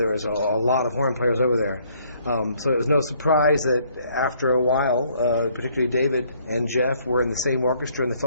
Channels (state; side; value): inverted; both; correlation -0.65